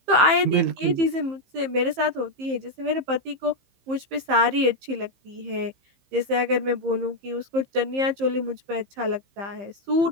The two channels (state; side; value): late; left; 15 ms